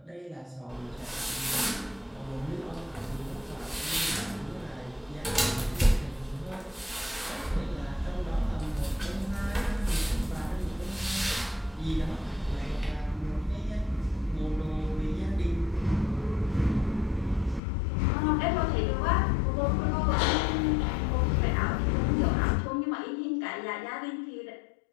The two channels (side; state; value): right; drops out; at 17.6 s